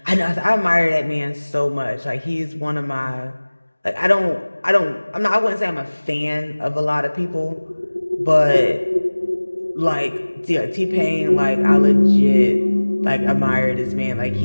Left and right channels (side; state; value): both; inverted; correlation -1.00